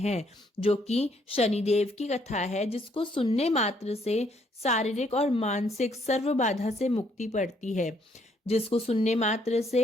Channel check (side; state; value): both; normal; correlation 0.69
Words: जो कि शनिदेव की कथा है, जिसको सुनने मात्र से शारीरिक और मानसिक सर्व बाधा से मुक्ति पड़ती है। जिसको सुनने मात्र